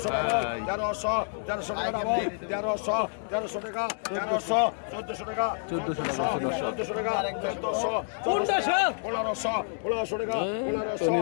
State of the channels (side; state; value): right; silent; digital silence